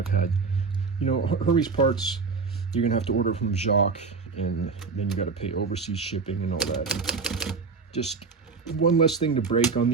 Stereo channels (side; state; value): left; quieter; 4.8 dB